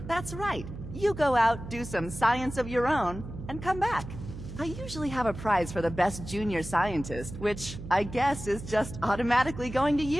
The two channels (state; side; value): noise; right; hum, 11 dB below the sound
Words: That's right. You go out, do some science of your own, and come back. I usually have a prize for the best junior scientist, which I guess is just automatically going to